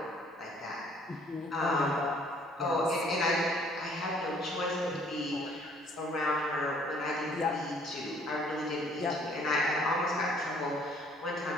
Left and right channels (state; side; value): normal; both; correlation 0.60